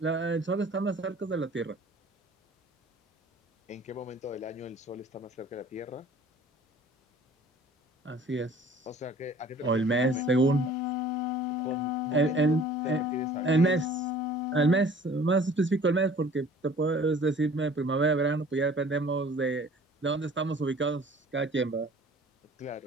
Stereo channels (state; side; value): normal; both; correlation 0.50